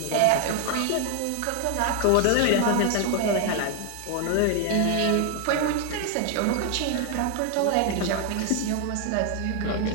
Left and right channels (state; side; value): different; both; correlation 0.01